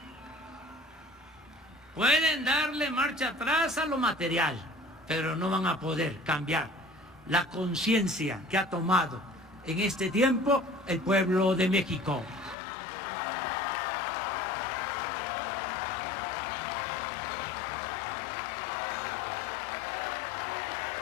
Pueden darle marcha atrás a lo material, pero no van a poder cambiar la conciencia que ha tomado en este tiempo el pueblo de México.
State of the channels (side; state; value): right; drops out; at 12.6 s